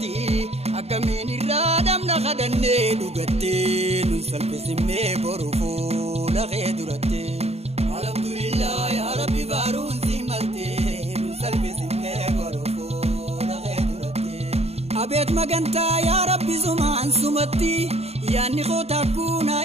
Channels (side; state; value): left; late; 0.30 ms